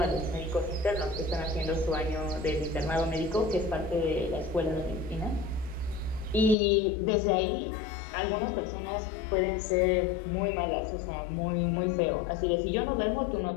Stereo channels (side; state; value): right; drops out; at 6.6 s